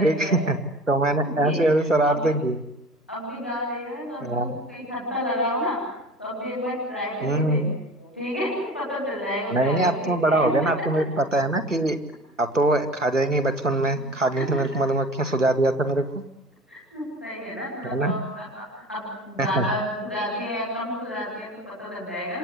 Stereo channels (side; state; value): both; normal; correlation 0.39